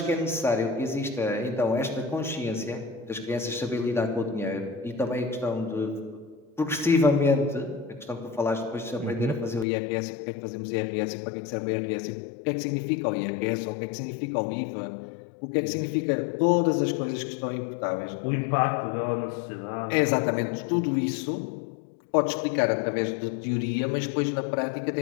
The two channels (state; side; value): drops out; right; at 9.7 s